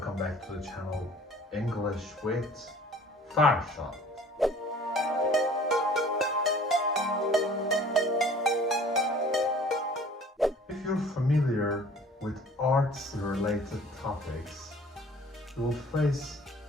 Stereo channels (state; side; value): normal; both; correlation 0.50